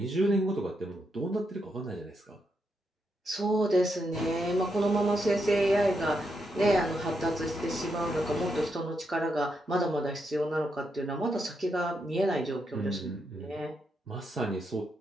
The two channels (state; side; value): normal; both; correlation 0.82